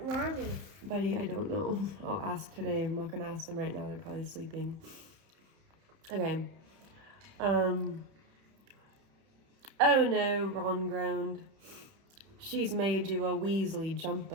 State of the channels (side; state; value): left; late; 31 ms